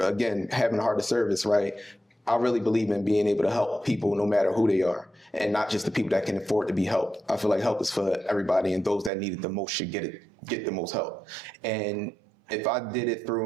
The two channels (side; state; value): left; drops out; at 9.1 s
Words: again, having a heart of service, right? I really believe in being able to help people no matter who they are, and not just the people that can afford to be helped. I feel like help is for everybody, and those that need it the most should get the most help. And if I did it